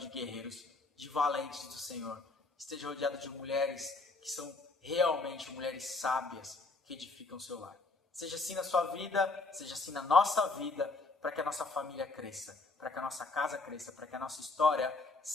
guerreiros, de valentes do Senhor. Esteja rodeado de mulheres que são realmente mulheres sábias que edificam o seu lar. Seja assim na sua vida, seja assim na nossa vida, para que a nossa família cresça, para que a nossa casa cresça, para que a nossa história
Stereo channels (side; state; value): right; quieter; 3.6 dB